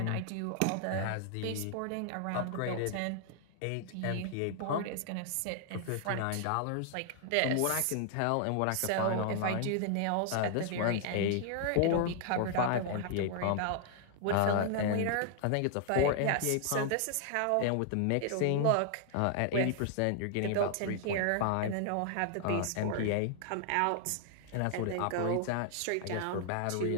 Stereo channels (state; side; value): different; both; correlation 0.00